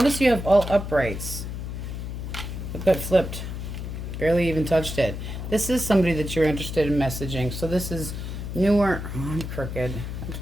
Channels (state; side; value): noise; left; hum, 6 dB below the sound